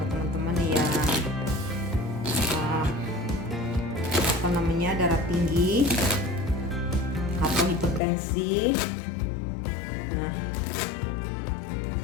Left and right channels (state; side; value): drops out; right; at 8.0 s